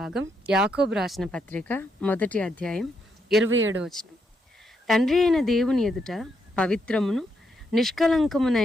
యాకోబు రాసిన పత్రిక 1వ అధ్యాయం 27వ వచనం. తండ్రి అయిన దేవుని ఎదుట పవిత్రమును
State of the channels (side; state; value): both; normal; correlation 0.78